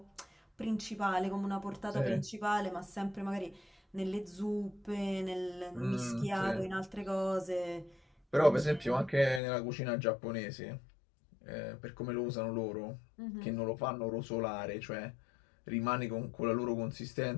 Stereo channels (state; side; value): drops out; right; at 9.4 s